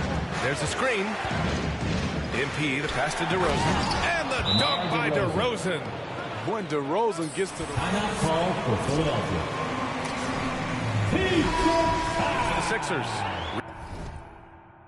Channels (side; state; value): both; identical; correlation 1.00